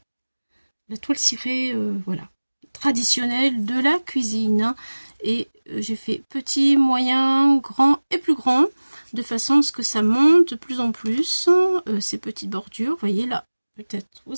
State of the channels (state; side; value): inverted; both; correlation -1.00